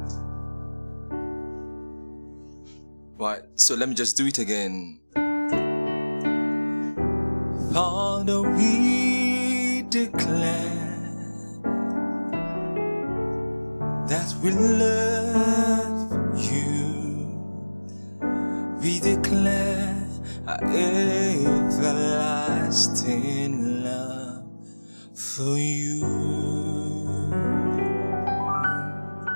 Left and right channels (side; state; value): both; inverted; correlation -1.00